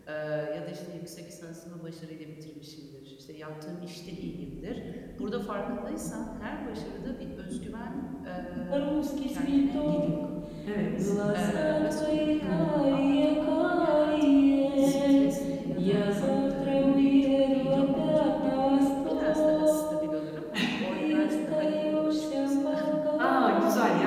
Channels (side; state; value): both; identical; correlation 1.00